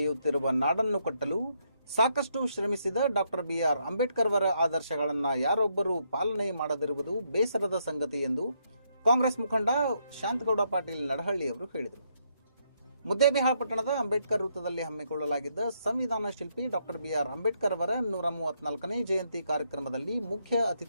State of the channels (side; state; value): both; inverted; correlation -0.75